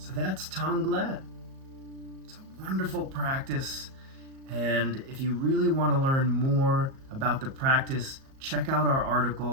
that's Tonglen. It's a wonderful practice, and if you really want to learn more about the practice, check out our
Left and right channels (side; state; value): left; late; 37 ms